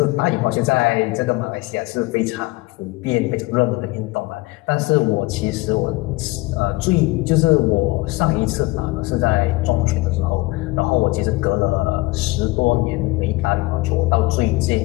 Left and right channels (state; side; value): quieter; right; 21.7 dB